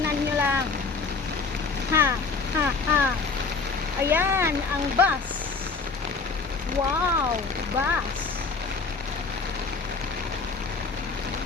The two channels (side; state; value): right; quieter; 4.5 dB